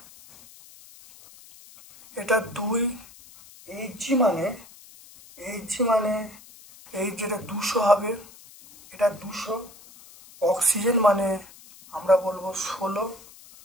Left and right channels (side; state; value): left; noise; hiss, 21 dB below the sound